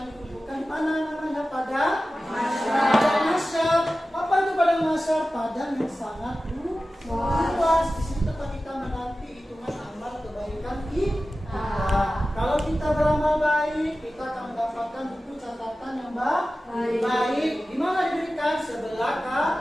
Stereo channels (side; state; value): both; normal; correlation 0.95